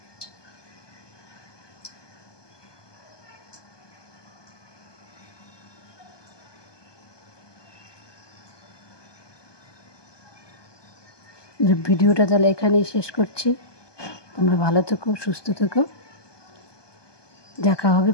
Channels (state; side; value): late; right; 1.2 ms